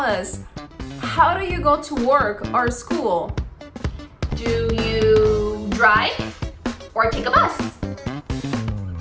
how do you go to work or school? Do you drive or take a bus?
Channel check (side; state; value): both; identical; correlation 1.00